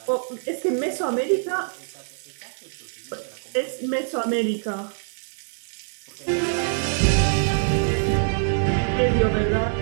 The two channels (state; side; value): silent; left; digital silence